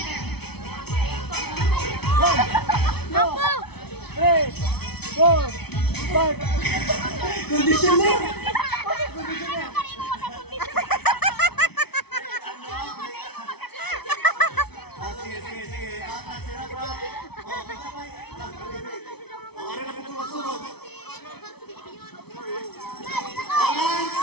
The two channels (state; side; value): late; right; 0.98 ms